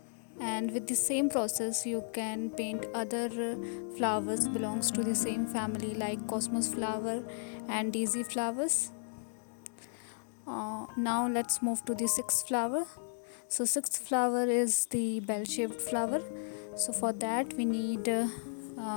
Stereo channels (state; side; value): silent; right; 55 dB below the other